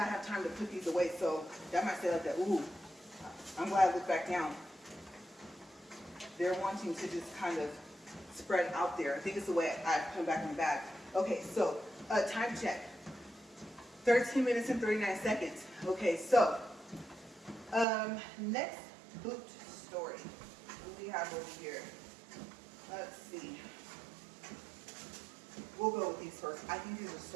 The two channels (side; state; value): left; drops out; at 17.9 s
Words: have time to put these away, so that might say like that, ooh, I'm glad I looked back down. They're wanting to just kind of spread out there. I think it's the way I put them back in the bag. Okay, so time check. 13 minutes and 39 seconds. Okay, so next boot story. What do we have over here? Let's see. We'll go with these first. I think these are